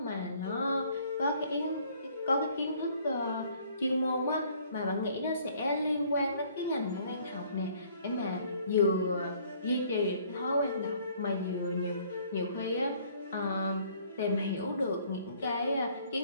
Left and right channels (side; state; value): both; inverted; correlation -0.59